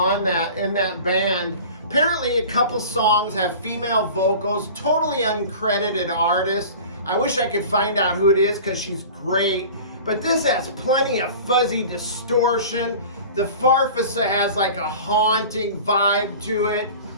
in that band. Apparently a couple songs have female vocals, totally uncredited artist. I wish I could find out who it is because she's great. But this has plenty of fuzzy distortion. The Farfisa has like a haunting vibe to it.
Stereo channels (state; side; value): inverted; both; correlation -0.40